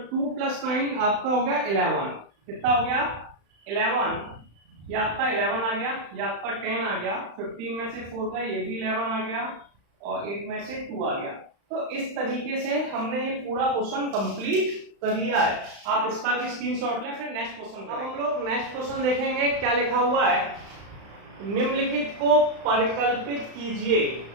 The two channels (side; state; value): left; late; 35 ms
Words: 2 प्लस 9 आपका हो गया 11। कितना हो गया? 11। ये आपका 11 आ गया, ये आपका 10 आ गया, 15 में से 4 का ये भी 11 आ गया, और 8 में से 2 आ गया। तो इस तरीके से हमने ये पूरा क्वेश्चन कंप्लीट कर लिया है। आप इसका भी स्क्रीनशॉट लें, फिर नेक्स्ट क्वेश्चन। अब हम लोग नेक्स्ट क्वेश्चन देखेंगे। क्या लिखा हुआ है? निम्नलिखित को परिकल्पित कीजिए।